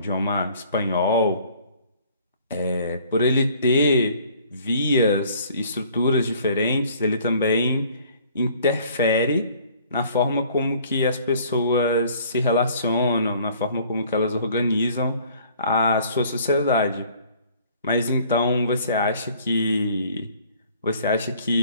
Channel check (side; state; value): both; inverted; correlation -0.56